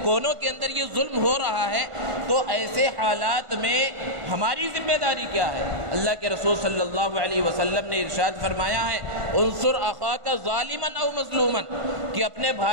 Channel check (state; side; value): late; left; 1.5 ms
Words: کونوں کے اندر یہ ظلم ہو رہا ہے۔ تو ایسے حالات میں ہماری ذمہ داری کیا ہے؟ اللہ کے رسول صلی اللہ علیہ وسلم نے ارشاد فرمایا ہے، انصر اخاک ظالما او مظلوما، کہ اپنے